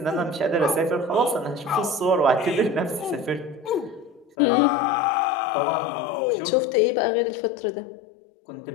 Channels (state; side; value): drops out; right; at 4.4 s